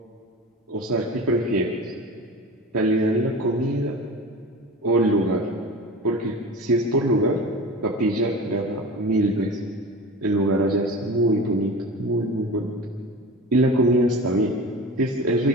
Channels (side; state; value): both; normal; correlation 0.33